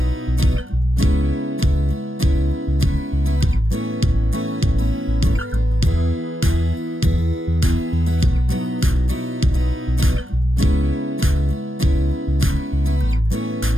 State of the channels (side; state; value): left; late; 0.59 ms